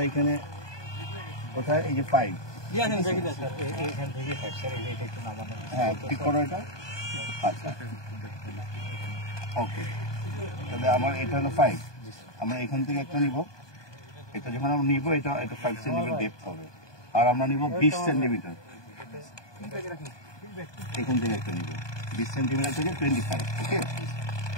এখানে কোথায় এই যে 5, হ্যাঁ ঠিক করো এটা। আচ্ছা ওকে, তাহলে আমার এটা হলো 5, আমরা এখান থেকে একটা নিব, এটা যখন আমরা নিব এটা 5 সেন্টিমিটার ডেপথ হবে, আর আমরা নিব 20 সেন্টিমিটার, এখান থেকে একটা নিব 20 সেন্টিমিটার থেকে 25। ওকে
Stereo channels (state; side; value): late; right; 1.2 ms